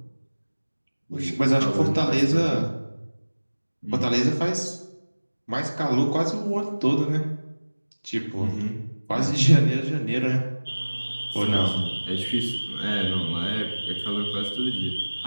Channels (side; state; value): both; inverted; correlation -1.00